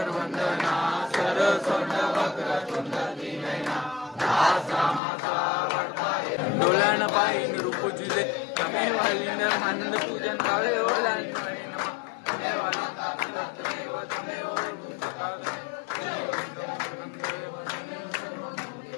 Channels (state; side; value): drops out; right; at 5.0 s